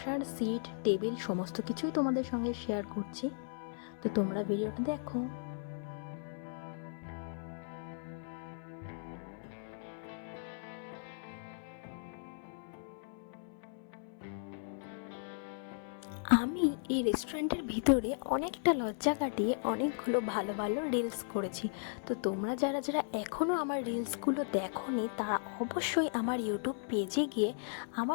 সিট টেবিল সমস্ত কিছুই তোমাদের সঙ্গে শেয়ার করছি। তো তোমরা ভিডিওটা দেখো। আমি এই রেস্টুরেন্টের ভিতরে অনেকটা লজ্জা কাটিয়ে অনেকগুলো ভালো ভালো রিলস করেছি। তো তোমরা যারা যারা এখনও আমার রিলসগুলো দেখোনি, তারা অবশ্যই আমার ইউটিউব পেজে গিয়ে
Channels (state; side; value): silent; right; 54 dB below the other